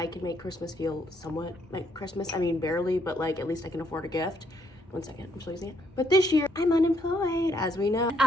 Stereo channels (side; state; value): both; normal; correlation 0.71